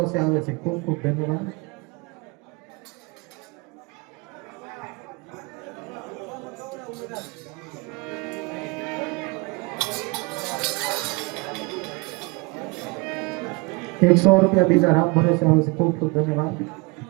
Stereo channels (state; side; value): quieter; left; 27.5 dB